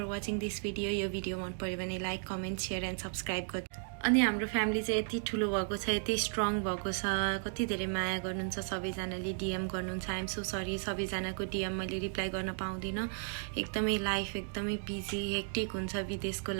watching this video. यो भिडियो मन पऱ्यो भने like, comment, share and subscribe गर्नु। अनि हाम्रो फ्यामिली चाहिँ यति ठुलो भएको छ, यति स्ट्रङ भएको छ, कति धेरै माया गर्नुहुन्छ सबैजनाले, डिएम गर्नुहुन्छ। आइएम सो सरी, सबैजनाको डिएम मैले रिप्लाई गर्न पाउँदिनँ, एकदमै लाइफ एकदमै बिजी हेक्टिक हुन्छ विदेशको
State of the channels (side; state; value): left; silent; 55 dB below the other